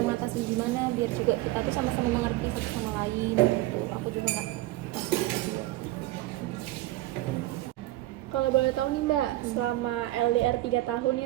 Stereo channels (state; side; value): quieter; left; 17.0 dB